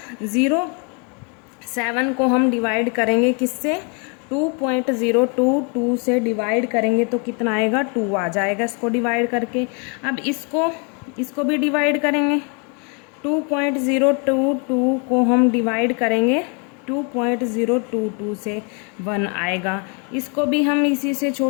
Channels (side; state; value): right; quieter; 35.8 dB